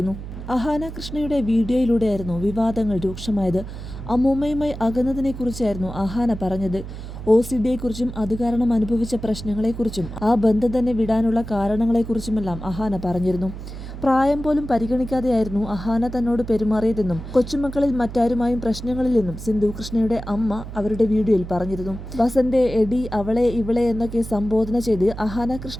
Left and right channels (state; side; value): noise; right; hum, 10 dB below the sound